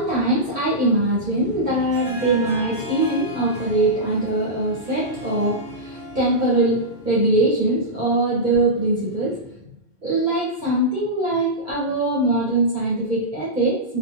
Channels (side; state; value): both; normal; correlation -0.12